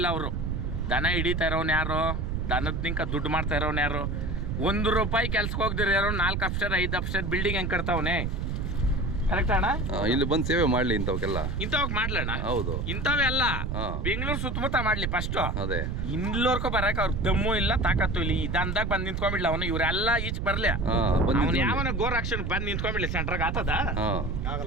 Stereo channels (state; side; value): noise; right; rumble, 2 dB below the sound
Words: ಅವರು ದನ ಹಿಡಿತಾ ಇರೋನು ಯಾರು? ದನದ ನಿಂಕ ದುಡ್ಡು ಮಾಡ್ತಾ ಇರೋನು ಯಾರು? ₹1 ಕೆಲ್ಸಕ್ಕೆ ಹೋಗ್ದಿರ ಯಾರು 4 ಅಪ್ಸ್ಟೇರ್ 5 ಅಪ್ಸ್ಟೇರ್ ಬಿಲ್ಡಿಂಗ್ ಹೆಂಗೆ ಕಟ್ತಾವನೆ, ಕರೆಕ್ಟ್ ಅಣ್ಣ? ಇಲ್ಲಿ ಬಂದು ಸೇವೆ ಮಾಡ್ಲಿ ಇಂಥವಕ್ಕೆಲ್ಲ. ಇಂಥವಕ್ ಮಾಡ್ಲಣ್ಣ. ಹೌದು, ಇಂಥವೇ ಅಲ್ಲ, ಬೆಂಗಳೂರು ಸುತ್ತಮುತ್ತ ಮಾಡ್ಲಿ ಫಸ್ಟ್. ಅದೇ ಇಲ್ಲೋರ್ಕೊ ಬರಕ್ ಅವ್ರ ದಮ್ಮು ಇಲ್ಲ, ತಾಕತ್ತು ಇಲ್ಲ. ಈ ದಂದಾಗ ಬಂದು ನಿಂತ್ಕೊಂಡ್ಬಿಡ್ಲಿ ಅವನು, ಇವರೆಲ್ಲ ಈಚ್ ಬರ್ಲಿ. ಅವನು ಯಾವನ ಗೋರಕ್ಷಣೆ ಬಂದು ನಿಂತ್ಕೊಂಡ್ಬಿಡ್ಲಿ ಸೆಂಟ್ರಾಗ ಆತದ?